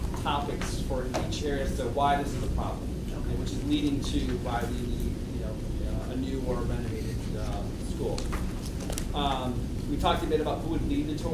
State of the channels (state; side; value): identical; both; correlation 1.00